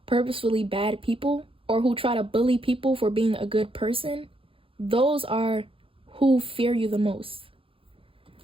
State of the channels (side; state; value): left; late; 0.26 ms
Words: purposefully bad people, or who try to bully people for being a good person, those are who fear you the most.